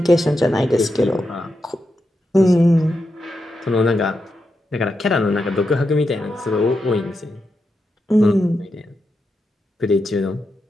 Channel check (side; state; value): both; normal; correlation 0.86